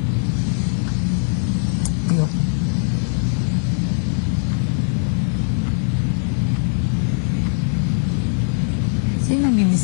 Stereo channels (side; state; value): right; silent; digital silence